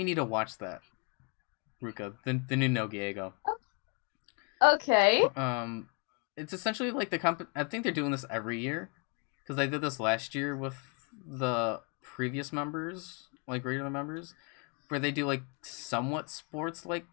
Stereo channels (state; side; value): quieter; right; 35.1 dB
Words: to watch that, Ruka. The new Nogiego. Okay. It's essentially like I think they're doing this every year, because they did this last year with the previous members, like regular members, where they do like somewhat sports like